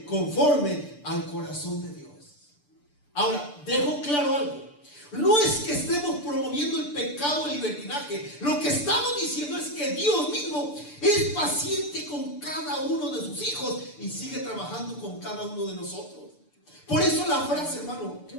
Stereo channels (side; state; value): right; late; 6.8 ms